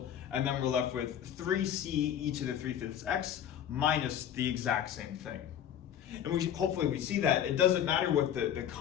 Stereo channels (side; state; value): right; quieter; 9.7 dB